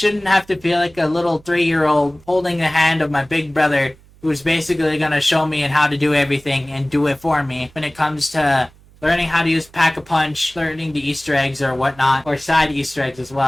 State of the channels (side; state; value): right; noise; hum, 27 dB below the sound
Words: have to feel like a little 3-year-old holding the hand of my big brother who's basically gonna show me and how to do everything and do it for me when it comes to learning how to use Pack-a-Punch, learning the Easter eggs or whatnot, or side Easter eggs as